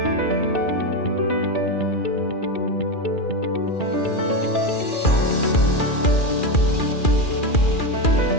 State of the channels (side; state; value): right; late; 2.4 ms